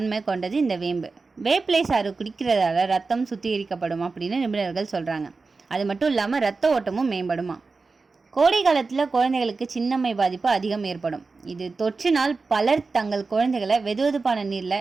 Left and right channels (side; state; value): left; quieter; 4.1 dB